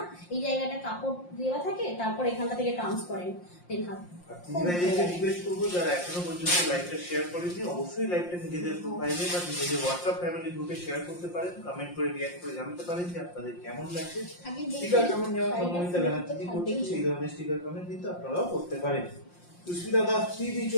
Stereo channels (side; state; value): right; late; 5.7 ms